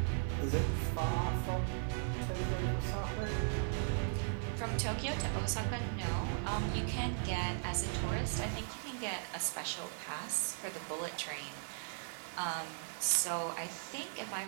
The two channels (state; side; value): silent; left; 53 dB below the other